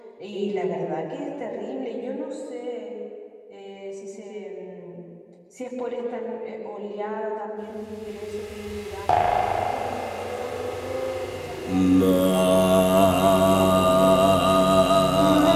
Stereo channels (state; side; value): identical; both; correlation 1.00